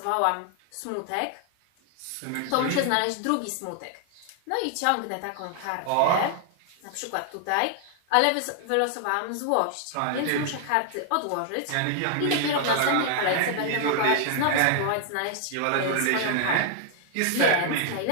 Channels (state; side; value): different; both; correlation 0.00